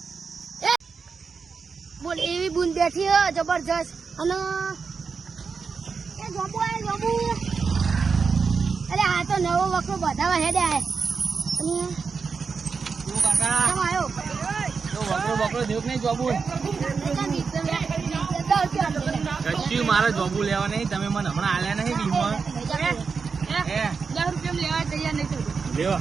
બોલ એવી પેલી બુન બેઠી હે જબરજસ્ત અને એ જોબુ આય જોબુ અરે આ તો નવો વખરો બધાવા હેડે આય અને શું કાકા કેમ આયો તો વકરો દેખ નહીં જોબુ કશું મારે જોબુ લેવા નહીં તમે મને હમણાં આલ્યા નહીં બીમાં હે 10 રૂપિયા લેવા તૈયાર નહીં થયું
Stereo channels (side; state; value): left; quieter; 5.2 dB